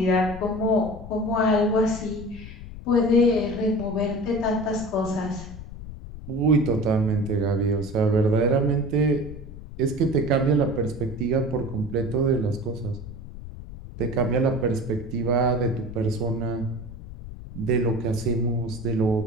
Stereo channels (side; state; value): left; noise; rumble, 13 dB below the sound